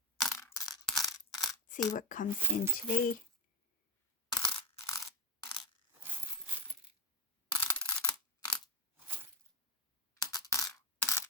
See what comes in today.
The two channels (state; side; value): normal; both; correlation 0.15